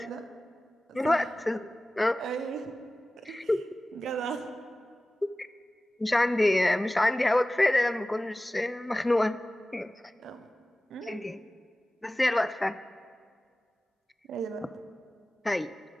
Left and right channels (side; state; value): both; normal; correlation 0.97